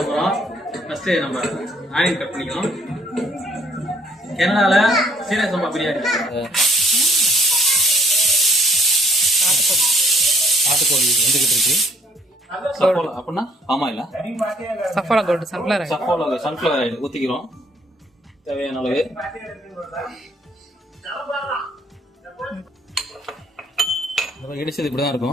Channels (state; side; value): normal; both; correlation 0.63